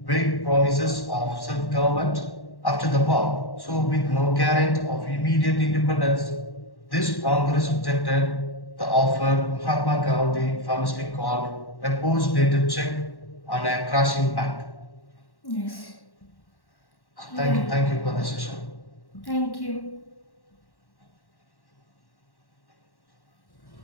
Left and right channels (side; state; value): right; late; 1.1 ms